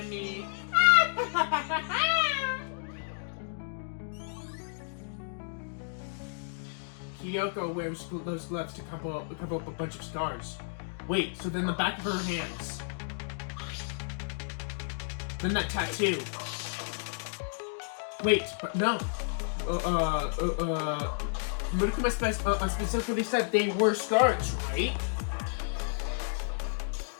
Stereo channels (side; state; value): right; silent; digital silence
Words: me. Kyoko wears those gloves to cover up a bunch of scars. Wait, so then the back of her hands. Then that tattoo. Wait, but no. Murukuma specifically said they were scars, right?